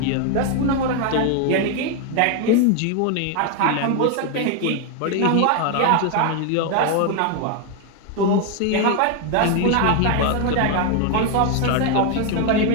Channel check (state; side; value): different; both; correlation 0.01